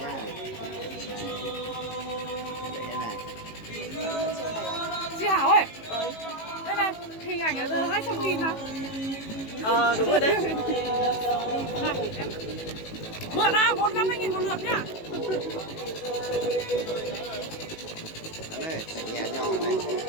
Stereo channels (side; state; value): right; late; 18 ms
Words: Cái này. Chị Hảo ơi. Đây này, hình ảnh ở giờ 200.000 nào. Đúng rồi đấy. Này, em mượn nào, 150.000 một lượt nhá. Cái này, chạy nhẹ nhỏ này.